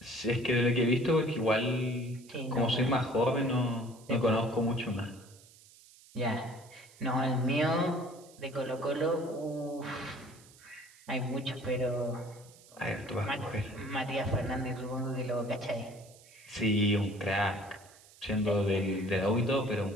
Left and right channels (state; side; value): noise; right; hiss, 24 dB below the sound